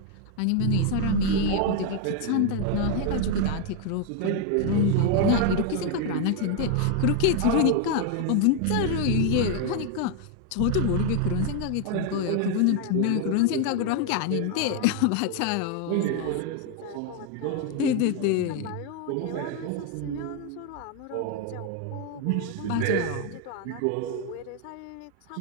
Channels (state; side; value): different; both; correlation 0.01